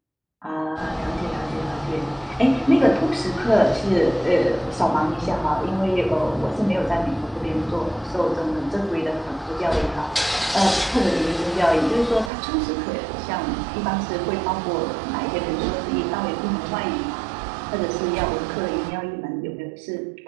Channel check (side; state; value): left; drops out; at 12.3 s